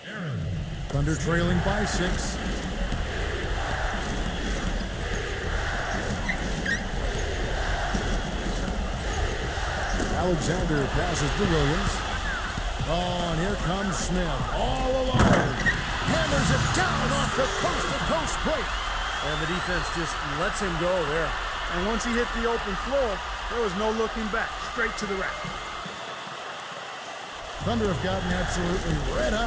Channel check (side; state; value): both; identical; correlation 1.00